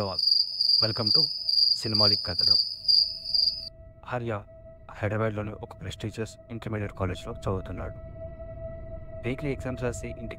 all, welcome to సినిమాలిక్ కథలు. ఆర్య హైదరాబాద్లోని ఒక ప్రెస్టీజియస్ ఇంటర్మీడియట్ కాలేజ్లో చదువుతున్నాడు. వీక్లీ ఎగ్జామ్స్ రాసి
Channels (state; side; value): identical; both; correlation 1.00